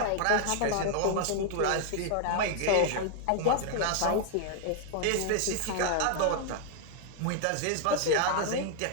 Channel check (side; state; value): both; different; correlation 0.00